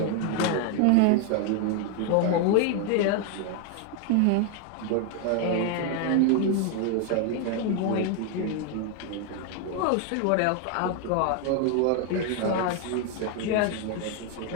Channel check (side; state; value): both; different; correlation 0.01